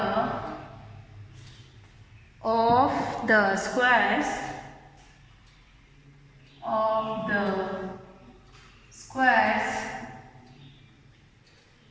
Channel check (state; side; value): identical; both; correlation 1.00